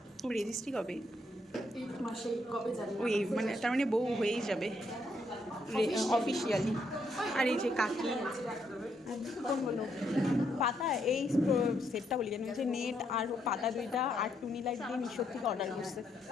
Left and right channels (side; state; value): both; normal; correlation 0.75